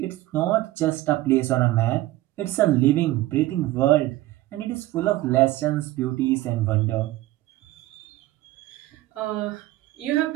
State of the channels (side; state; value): left; quieter; 16.7 dB